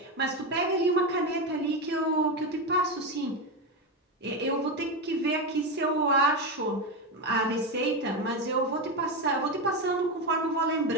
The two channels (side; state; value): both; normal; correlation 0.14